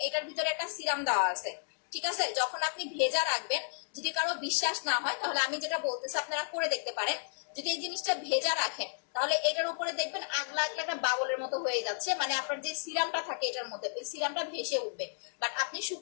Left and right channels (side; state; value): right; silent; digital silence